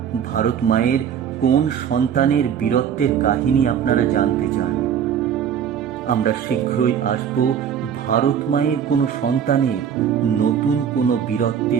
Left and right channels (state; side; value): quieter; left; 8.4 dB